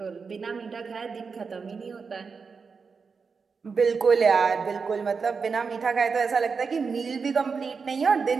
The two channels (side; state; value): left; quieter; 5.2 dB